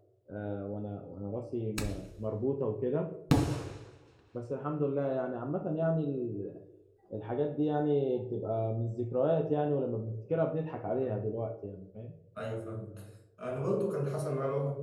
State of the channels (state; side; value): identical; both; correlation 1.00